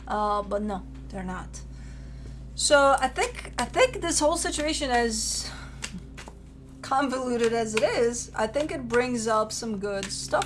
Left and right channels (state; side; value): identical; both; correlation 1.00